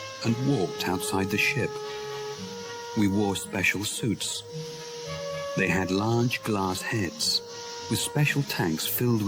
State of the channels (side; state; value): both; identical; correlation 1.00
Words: and walked outside the ship. We wore special suits. They had large glass heads with special tanks filled